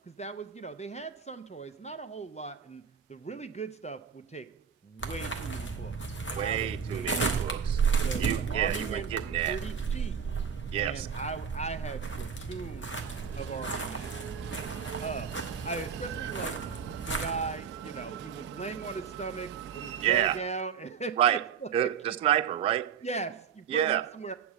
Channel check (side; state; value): left; quieter; 7.1 dB